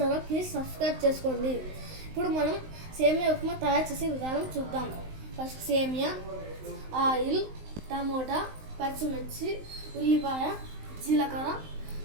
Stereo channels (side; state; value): left; late; 19 ms